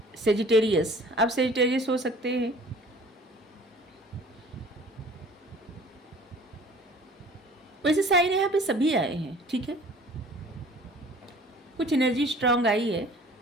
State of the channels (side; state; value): both; normal; correlation 0.49